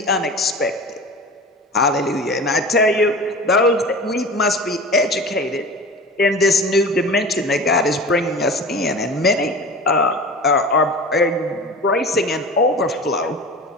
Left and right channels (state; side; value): normal; both; correlation 0.35